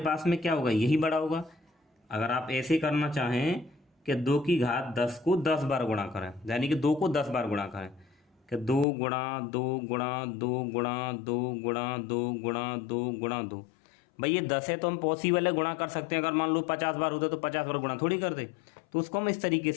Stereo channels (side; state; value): right; drops out; at 8.8 s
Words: पास में क्या होगा? यही बड़ा होगा। अगर आप ऐसे करना चाहें कि 2 की घात 10 को 10 बार गुणा करें, यानी कि 2 को 10 बार गुणा करें, कि 2 गुणा 2 गुणा 2 गुणा 2 गुणा 2 गुणा 2 गुणा 2। भाई ये 10 है तो हम पॉसिबल है गुणा कर सकते हैं। अगर मान लो 50 बार होता तो 50 बार गुणा थोड़ी करते। तो उसको हम इस तरीके